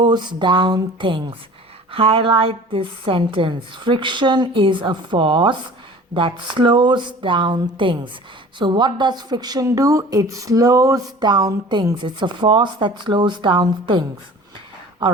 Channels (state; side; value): normal; both; correlation 0.44